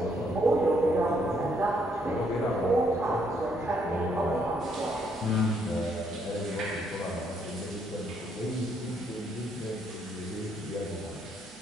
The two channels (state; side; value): noise; left; hum, 29 dB below the sound